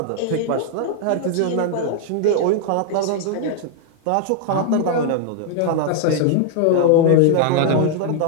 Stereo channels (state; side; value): different; both; correlation 0.00